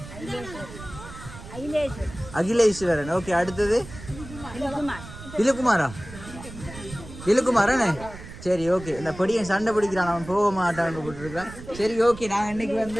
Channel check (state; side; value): noise; right; rumble, 14 dB below the sound